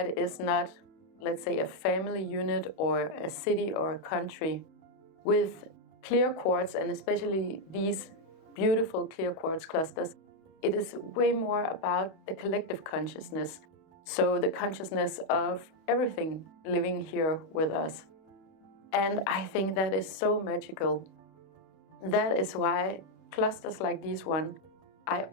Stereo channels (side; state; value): right; late; 31 ms